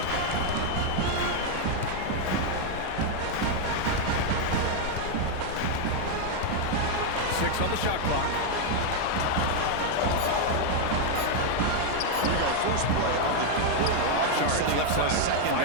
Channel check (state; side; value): different; both; correlation 0.01